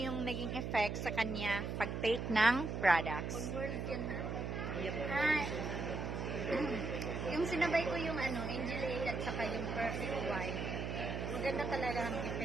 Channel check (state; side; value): noise; right; hum, 3 dB below the sound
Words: naging effect sa kanya pag-take ng products. On world yan ha. Ah, yung sinabay ko yung Angel A at saka yung Perfect White. Maganda talaga ang